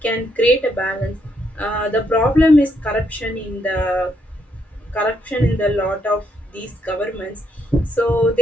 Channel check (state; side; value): normal; both; correlation 0.75